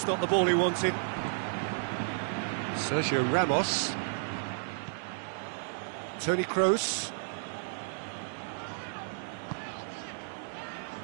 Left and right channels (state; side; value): silent; left; digital silence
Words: not the ball he wanted. Sergio Ramos. Toni Kroos.